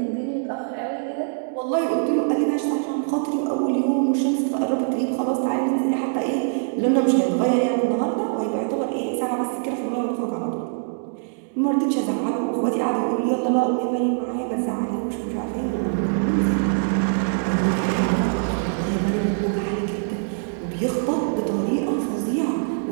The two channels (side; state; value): left; silent; digital silence